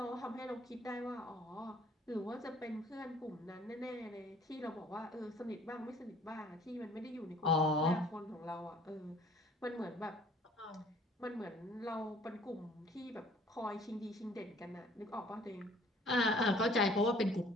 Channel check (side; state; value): both; normal; correlation 0.55